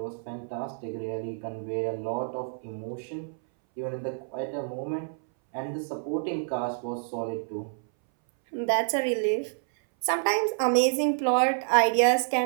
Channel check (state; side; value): silent; left; 59 dB below the other